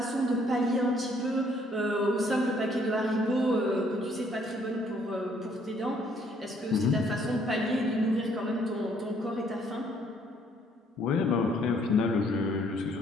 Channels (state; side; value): normal; both; correlation 0.65